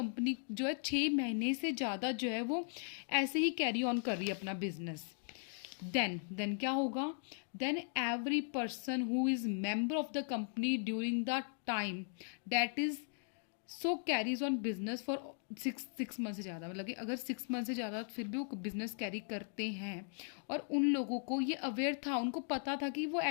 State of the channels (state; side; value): silent; right; 52 dB below the other